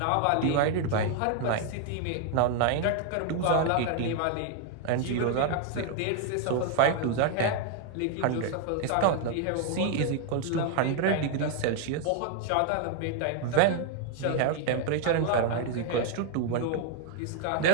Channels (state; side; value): different; both; correlation 0.00